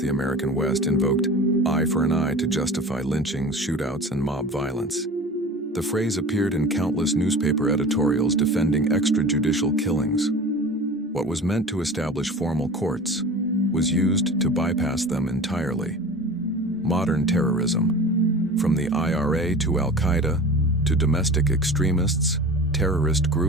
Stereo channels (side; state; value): both; normal; correlation 0.36